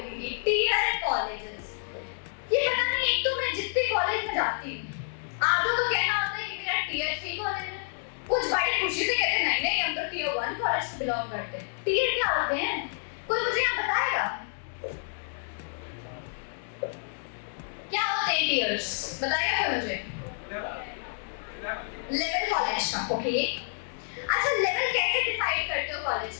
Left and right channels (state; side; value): silent; right; digital silence